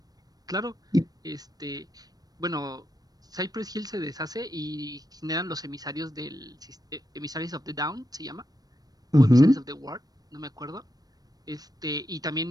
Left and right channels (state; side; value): late; left; 0.19 ms